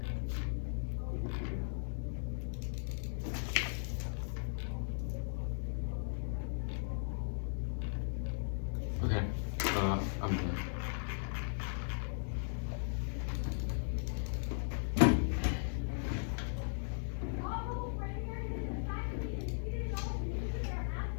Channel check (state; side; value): silent; right; digital silence